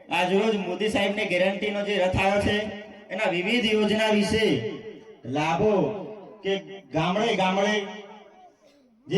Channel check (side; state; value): both; identical; correlation 1.00